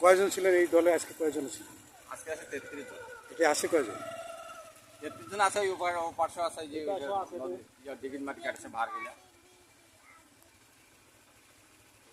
কয়জন ছিলেন এই দলে? আজকে কয়জন ছিলেন? আজকে আছে 33 জন। এটা আসে কয়জন? 33 জন আছে, ওই পার্শ্ব আছে, যে ডিগির মাটি কাটছে ভার গিলা।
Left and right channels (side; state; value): both; identical; correlation 1.00